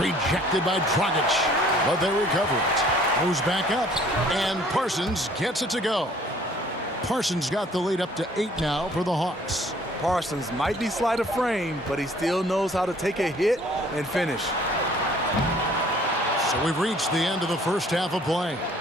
by Dragic. But they recover it. Goes back up. And Parsons gets it to go. Parsons got the lead up to 8 now for the Hawks. Parsons might be slight of frame, but he still knows how to take a hit and finish. So we've reached the end of the first half of play.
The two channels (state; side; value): normal; both; correlation 0.56